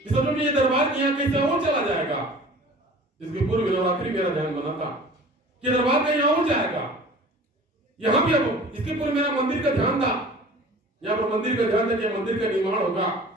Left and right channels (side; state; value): both; normal; correlation 0.44